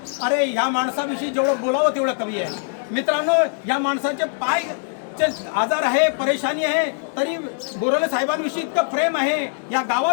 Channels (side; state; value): right; silent; digital silence